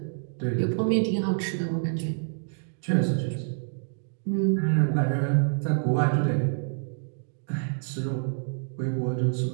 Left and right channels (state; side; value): silent; left; digital silence